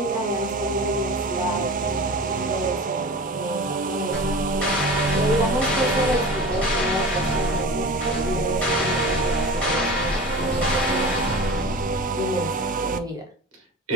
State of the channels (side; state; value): both; normal; correlation 0.33